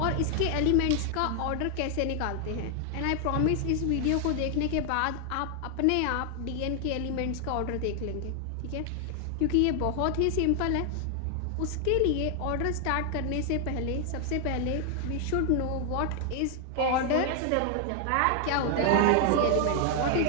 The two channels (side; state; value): both; different; correlation 0.00